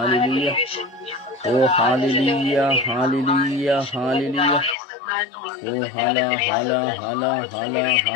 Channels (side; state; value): right; drops out; at 4.8 s